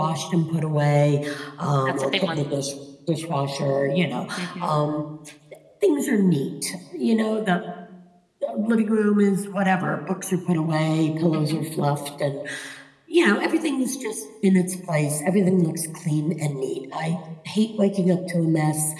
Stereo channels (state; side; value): identical; both; correlation 1.00